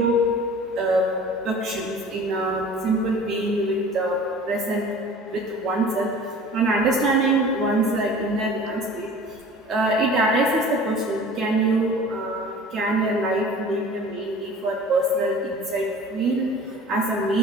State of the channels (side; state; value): both; normal; correlation 0.43